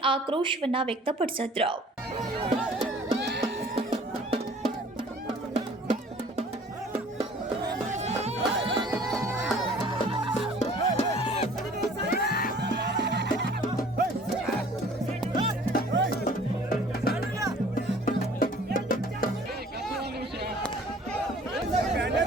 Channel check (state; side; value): normal; both; correlation 0.51